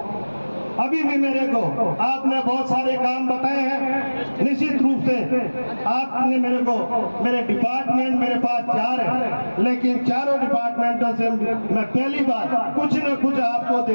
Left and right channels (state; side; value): inverted; both; correlation -1.00